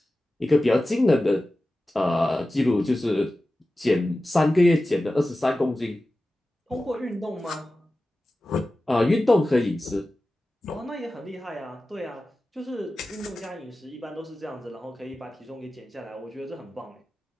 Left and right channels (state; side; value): normal; both; correlation 0.95